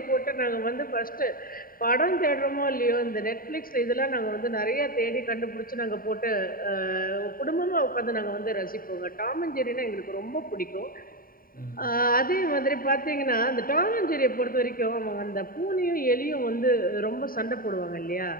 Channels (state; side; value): late; right; 0.42 ms